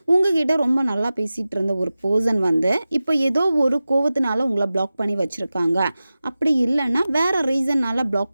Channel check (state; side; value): inverted; both; correlation -0.95